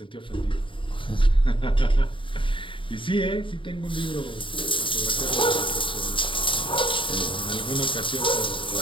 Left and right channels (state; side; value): late; right; 0.25 ms